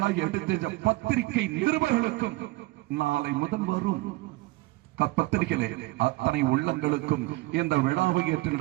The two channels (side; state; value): left; quieter; 20.9 dB